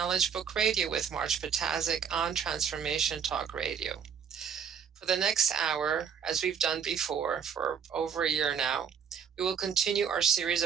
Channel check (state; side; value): quieter; left; 7.2 dB